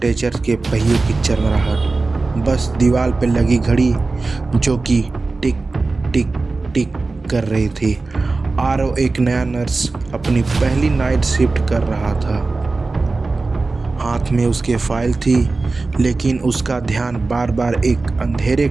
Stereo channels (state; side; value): quieter; left; 3.6 dB